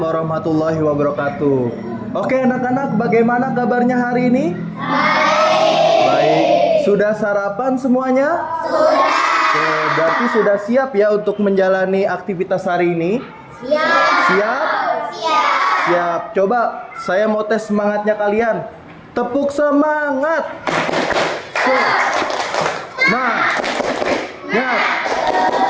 wabarakatuh. Oke anak-anak, bagaimana kabarnya hari ini? Baik. Sudah sarapan semuanya? Sudah. Oke, berarti sudah siap ya untuk menjalani aktivitas hari ini? Siap. Siap. Coba saya mau tes semangatnya kalian. Tepuk semangat. Nah. Ya.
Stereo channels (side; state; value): both; identical; correlation 1.00